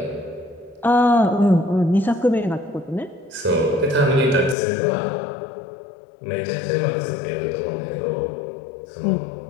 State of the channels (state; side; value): drops out; right; at 4.5 s